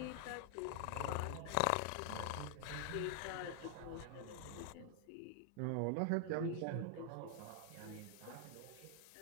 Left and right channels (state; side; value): different; both; correlation 0.00